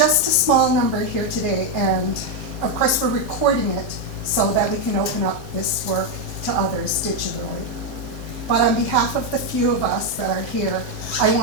a small number here today, and of course we're recording it so that we can open up this work to others digitally. But on behalf of the few of us that are here, I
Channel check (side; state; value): both; normal; correlation 0.03